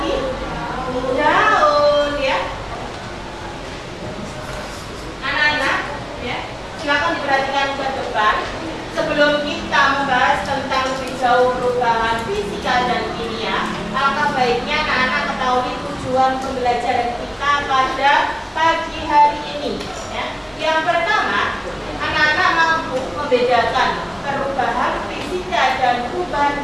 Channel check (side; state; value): both; identical; correlation 1.00